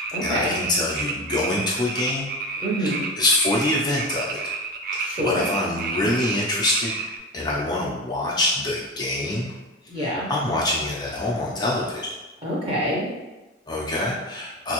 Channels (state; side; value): normal; both; correlation 0.24